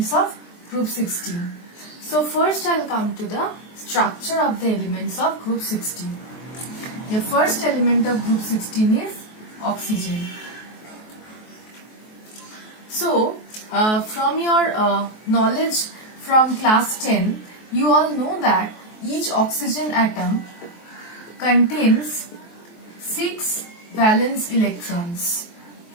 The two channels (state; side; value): late; right; 23 ms